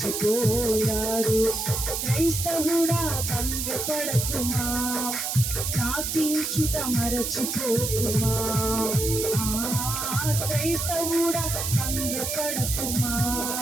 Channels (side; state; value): right; noise; hiss, 2 dB below the sound